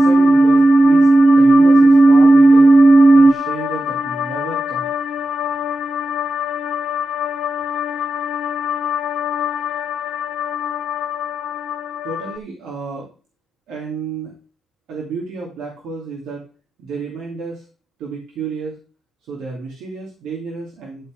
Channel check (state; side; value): normal; both; correlation 0.91